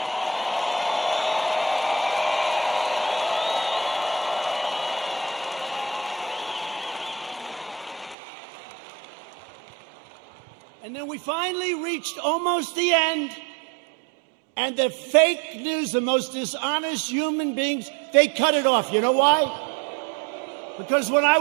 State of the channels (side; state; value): left; drops out; at 8.2 s